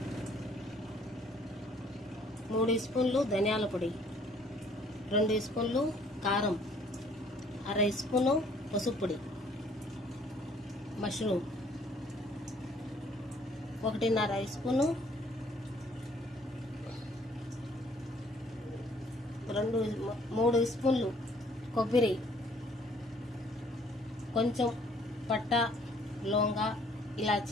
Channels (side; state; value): both; normal; correlation 0.60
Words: మూడు స్పూన్లు ధనియాల పొడి, 2 స్పూన్లు కారం, అర స్పూను పసుపు పొడి, మష్రూమ్ 1.5 స్పూను, 3 స్పూన్లు కొబ్బరి, కొంచెం పట్ట, లవంగ,